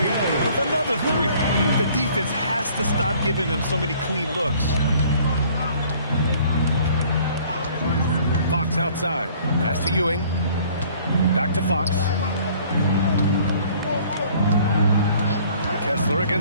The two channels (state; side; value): inverted; both; correlation -0.56